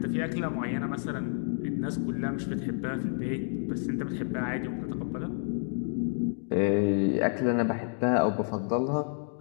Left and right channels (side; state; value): right; silent; digital silence